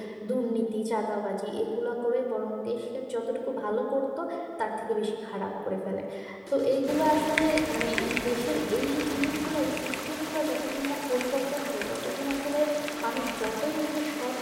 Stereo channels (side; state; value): both; identical; correlation 1.00